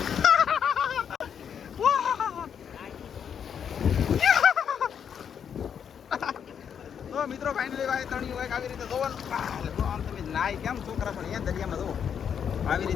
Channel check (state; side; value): quieter; right; 7.8 dB